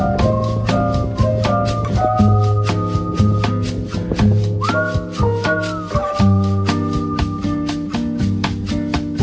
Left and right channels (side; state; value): both; identical; correlation 1.00